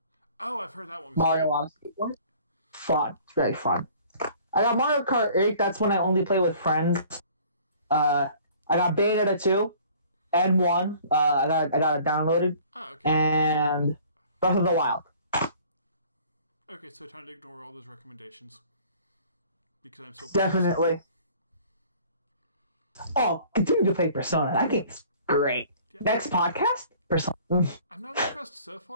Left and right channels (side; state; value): both; inverted; correlation -0.52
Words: Oh, I've heard that one. Mario Odyssey. Fun. It's very fun. I got Mario Kart 8. That's when I only play with friends. I got Bayonetta 2 and 1. I got it downloaded. Oh, okay. And Breath of the Wild. Okay, so time to ignore all those recommendations. Because I'm so definitely. Oh, continue to play Persona. That game's great. Yeah. Next podcast? Persona. I'm not impressed so